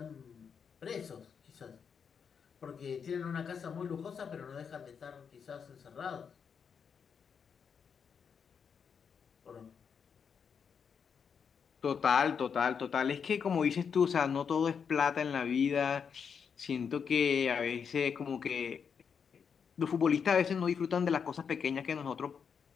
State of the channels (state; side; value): quieter; right; 6.7 dB